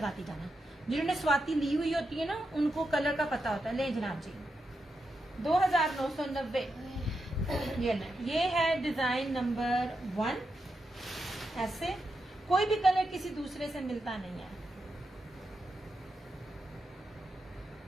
जाना, जिन्होंने स्वाति ली हुई होती है ना, उनको कलर का पता होता है। ले जनाब जी, 2990। ये है डिजाइन नंबर 1। ऐसे कोई भी कलर किसी दूसरे से मिलता नहीं है।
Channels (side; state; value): both; normal; correlation 0.86